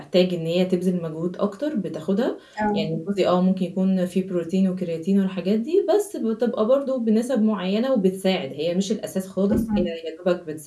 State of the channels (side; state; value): both; identical; correlation 1.00